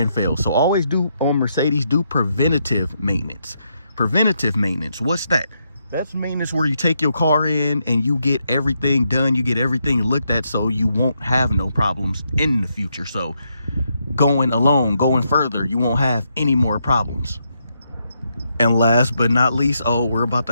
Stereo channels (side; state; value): both; inverted; correlation -0.79